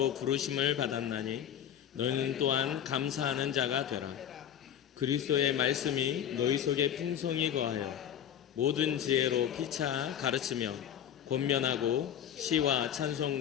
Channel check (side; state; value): right; quieter; 9.8 dB